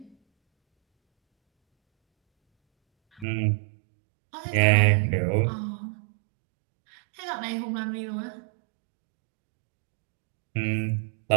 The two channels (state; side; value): drops out; left; at 3.2 s